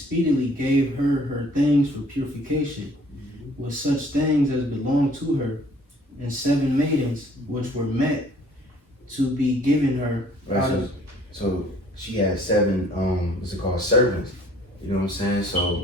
gave her things for purification, with such things as belonged to her, and 7 maidens which were met to be given her. Right, so she had 7, what's it called, servants. You know what I'm saying?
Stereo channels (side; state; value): both; normal; correlation 0.56